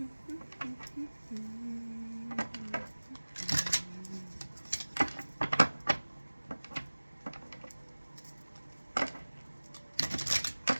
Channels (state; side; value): inverted; both; correlation -1.00